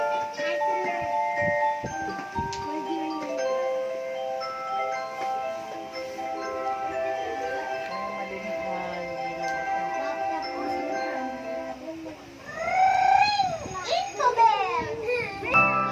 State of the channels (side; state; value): both; identical; correlation 1.00